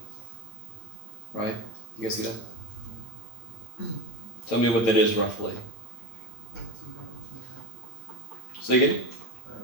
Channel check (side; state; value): right; late; 8.6 ms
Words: Right? You guys see that? Tell me what that is roughly. Say again?